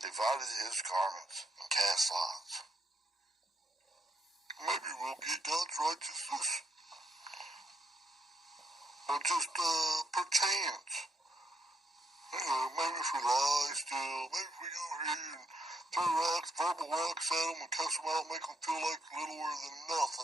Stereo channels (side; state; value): both; normal; correlation 0.77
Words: his garments and cast lots. Maybe we'll get God's righteousness. Or just perchance. Maybe if we lie still, maybe if we go here and throw rocks, verbal rocks at them and cuss them out, make them feel like littler than